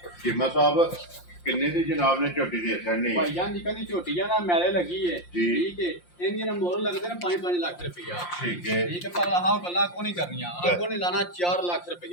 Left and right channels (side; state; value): right; late; 5.7 ms